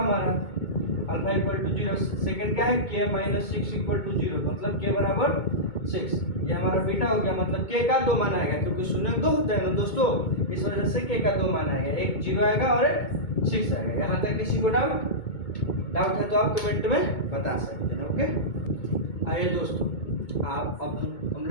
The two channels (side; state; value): right; late; 2.2 ms